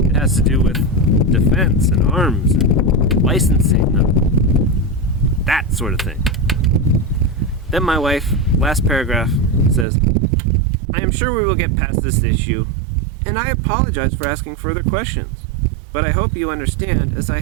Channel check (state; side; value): drops out; left; at 9.9 s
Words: has to do with defense and arms and licensing and that sort of thing. Then my wife, last paragraph, says, I am sure we will get past this issue, and I apologize for asking further questions, but I hope you understand as I